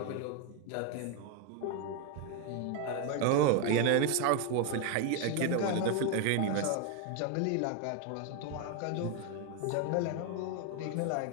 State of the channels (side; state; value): both; different; correlation 0.01